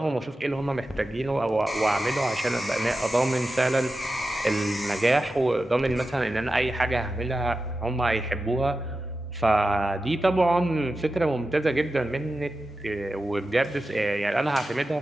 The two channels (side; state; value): both; normal; correlation 0.92